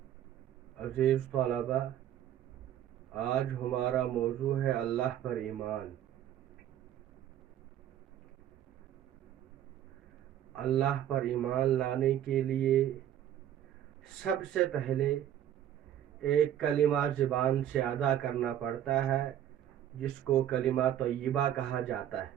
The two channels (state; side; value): quieter; left; 11.1 dB